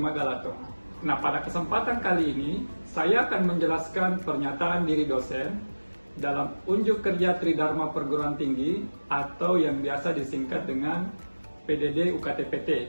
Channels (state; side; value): inverted; both; correlation -1.00